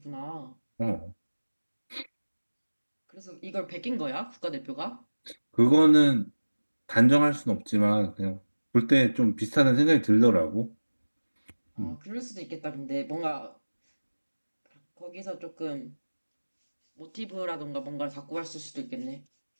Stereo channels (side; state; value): both; inverted; correlation -1.00